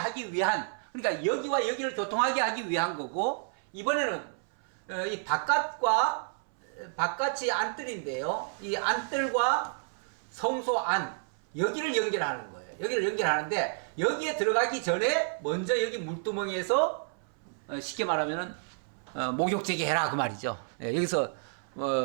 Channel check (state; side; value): silent; left; 58 dB below the other